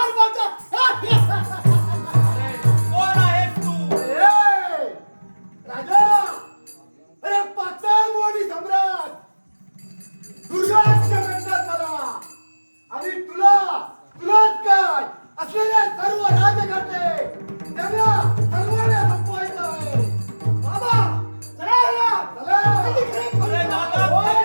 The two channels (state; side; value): inverted; both; correlation -1.00